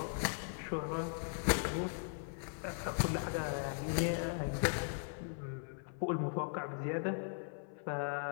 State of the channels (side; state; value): right; silent; 52 dB below the other